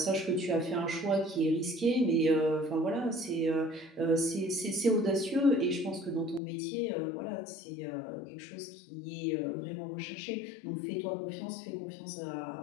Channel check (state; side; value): drops out; right; at 6.4 s